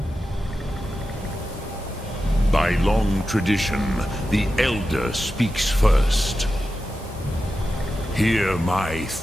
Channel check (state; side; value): normal; both; correlation 0.91